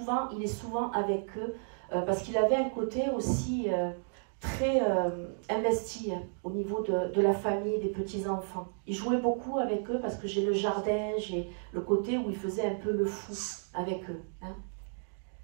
il est souvent avec eux parce qu'il avait un côté aussi très investi au niveau de la famille, des petits-enfants. Il jouait beaucoup avec eux parce que j'ai le jardin, j'ai le côté où il faisait un peu le fou avec eux. Hein.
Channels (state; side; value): silent; left; digital silence